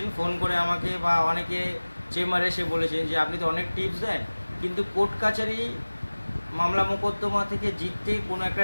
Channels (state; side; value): inverted; both; correlation -1.00